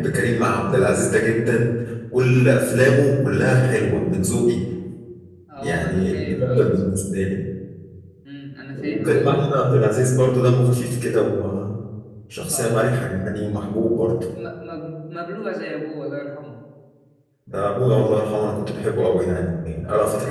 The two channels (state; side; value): identical; both; correlation 1.00